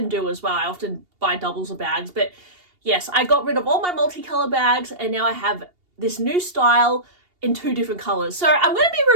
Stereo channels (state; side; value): late; left; 2.8 ms